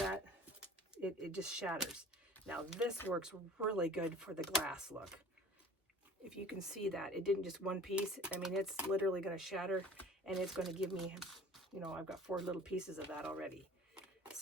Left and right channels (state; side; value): normal; both; correlation 0.44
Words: It just shatters. Now this works really good for the glass look. If you can see that, it didn't just one piece. I mean, it's literally going to shatter, and it's going to give me, you know, I've got 4 little pieces of that already.